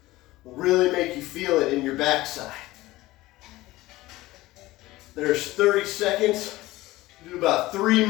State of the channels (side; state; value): right; quieter; 18.2 dB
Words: will really make you feel it in your backside. There's 30 seconds. Do about 3